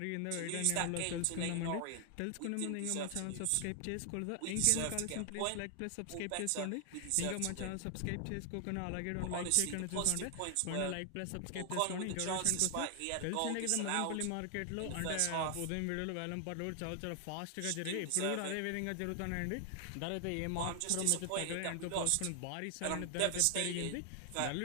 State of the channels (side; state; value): both; different; correlation 0.00